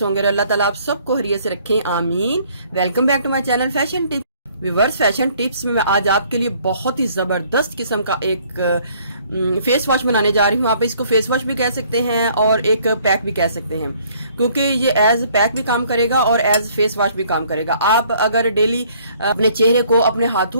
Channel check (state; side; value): inverted; both; correlation -0.61